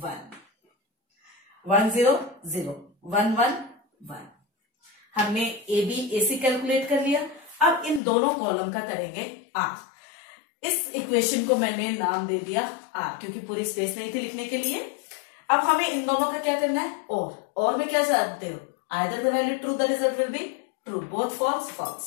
1 0 0 1 1 1। हमने AB AC कैलकुलेट कर लिया। अब इन दोनों कॉलम का करेंगे R। इस इक्वेशन को मैंने नाम दे दिया R, क्योंकि पूरी स्पेस नहीं थी लिखने के लिए। अब हमें इन दोनों का क्या करना है? और में क्या चाहते हो? Either the value true the result will be true, both false false,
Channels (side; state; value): right; drops out; at 8.0 s